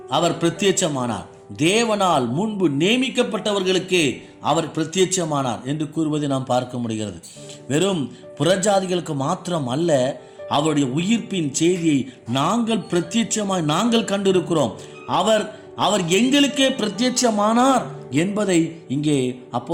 அவர் பிரத்யட்சமானார். தேவனால் முன்பு நியமிக்கப்பட்டவர்களுக்கே அவர் பிரத்யட்சமானார் என்று கூறுவதை நாம் பார்க்க முடிகிறது. வெறும் புறஜாதிகளுக்கு மாத்திரம் அல்ல, அவருடைய உயிர்ப்பின் செய்தியை நாங்கள் கண்டிருக்கிறோம். அவர் எங்களுக்கே பிரத்யட்சமானார் என்பதை இங்கே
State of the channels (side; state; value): both; identical; correlation 1.00